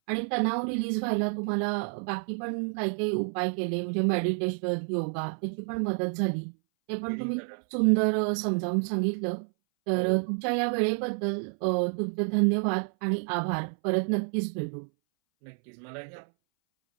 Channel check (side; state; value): left; silent; 59 dB below the other